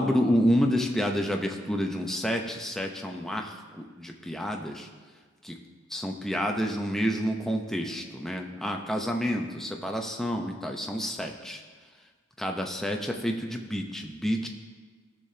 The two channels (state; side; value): normal; both; correlation 0.84